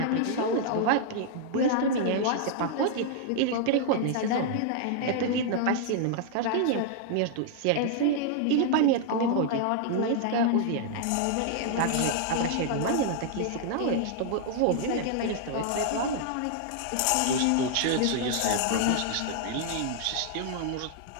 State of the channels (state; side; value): different; both; correlation -0.01